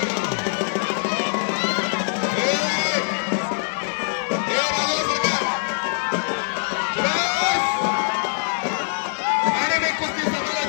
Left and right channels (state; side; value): silent; right; 63 dB below the other